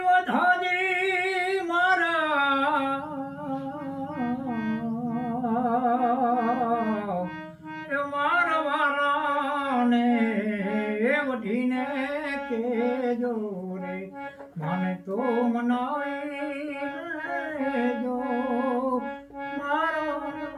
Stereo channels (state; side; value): identical; both; correlation 1.00